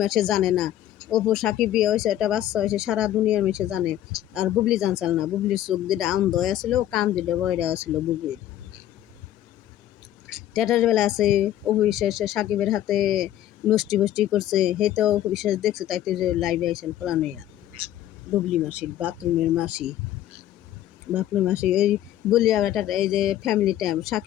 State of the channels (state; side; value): quieter; right; 12.5 dB